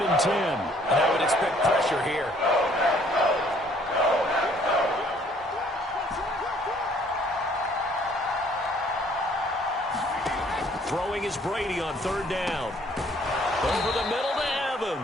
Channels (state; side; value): normal; both; correlation 0.61